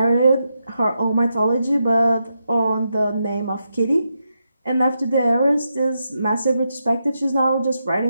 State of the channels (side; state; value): both; inverted; correlation -0.85